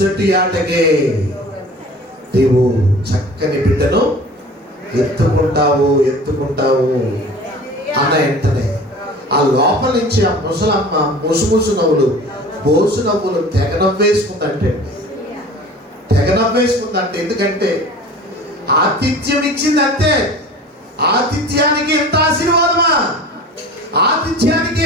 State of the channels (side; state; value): both; normal; correlation 0.42